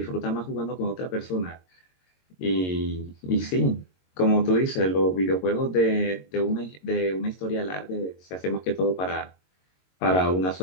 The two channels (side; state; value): right; late; 22 ms